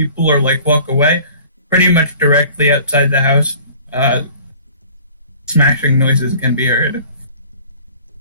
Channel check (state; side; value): inverted; both; correlation -0.47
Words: or walk away. Pretty much directly outside the house, smashing noises can be heard.